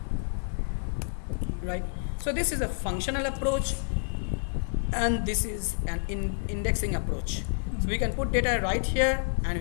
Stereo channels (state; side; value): silent; right; digital silence